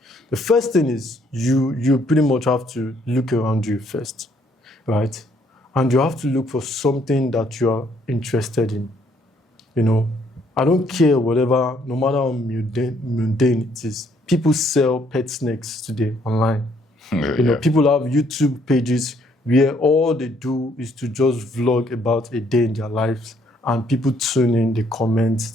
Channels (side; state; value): both; normal; correlation 0.67